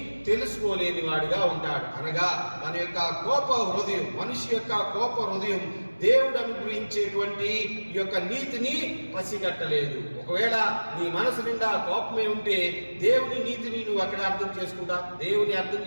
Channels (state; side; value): inverted; both; correlation -1.00